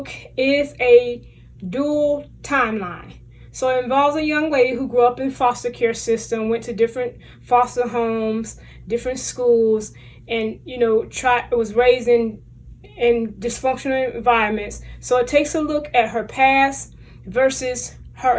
is a dual timeline. So it involves a young lady who grew up in foster care system, went to different foster homes, different schools, and was raised in dysfunctional environments. So it takes a look at her past versus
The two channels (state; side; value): identical; both; correlation 1.00